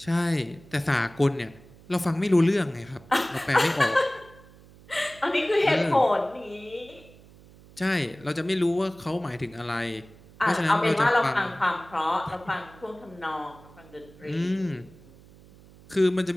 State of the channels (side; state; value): right; noise; hum, 23 dB below the sound